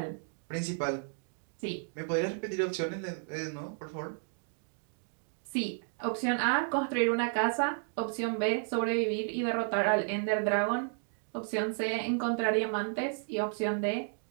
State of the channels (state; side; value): silent; left; 56 dB below the other